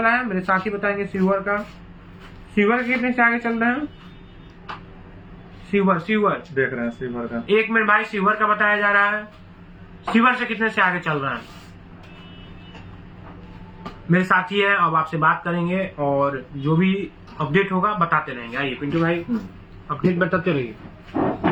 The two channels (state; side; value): identical; both; correlation 1.00